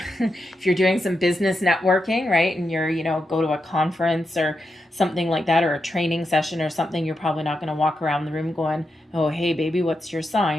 you're doing some business networking, right, and you're go to a conference or something like that, or a training session or something, you're probably not going to walk around the room going, "Oh, hey, baby, what's your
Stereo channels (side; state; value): both; normal; correlation 0.86